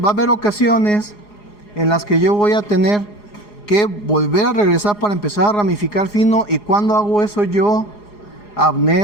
va a haber ocasiones en las que yo voy a tener que volver a regresar para empezar a ramificar fino. Y cuando hago eso yo,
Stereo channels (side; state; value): right; late; 4.8 ms